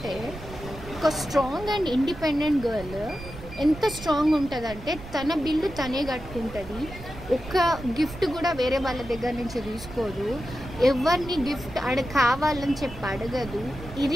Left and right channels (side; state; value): right; noise; rumble, 14 dB below the sound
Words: ఒక స్ట్రాంగ్ అండ్ ఇండిపెండెంట్ గర్ల్ ఎంత స్ట్రాంగ్ ఉంటుందంటే తన బిల్లు తనే కట్టుకుంటుంది. ఒక్క గిఫ్ట్ కూడా వేరే వాళ్ళ దగ్గర నుంచి తీసుకోదు. ఎవరిని గిఫ్ట్ కావాలని చెప్పి అడగదు.